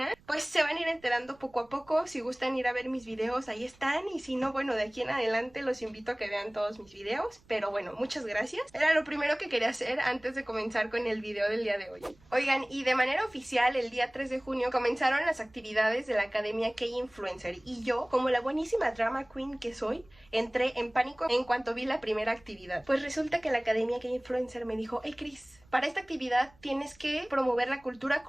Pues se van a ir enterando poco a poco. Si gustan ir a ver mis videos, ahí están, y si no, bueno, de aquí en adelante los invito a que vean todos mis videos. Pero bueno, muchas gracias. Era lo primero que quería hacer antes de comenzar con el video del día de hoy. Oigan, y de manera oficial el día 3 de junio comenzaron las actividades de la Academia K-Influencer, y yo, como la buenísima drama queen que soy, entré en pánico en cuanto vi la primera actividad. Pues resulta que la Academia K-Influencer me dijo: hey Chris, para esta actividad tienes que promover la cultura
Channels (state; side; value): noise; right; rumble, 29 dB below the sound